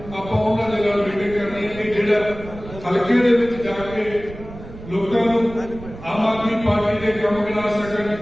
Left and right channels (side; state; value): right; noise; rumble, 14 dB below the sound